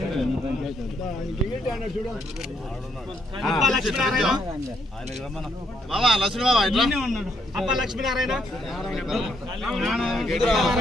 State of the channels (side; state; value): both; normal; correlation 0.74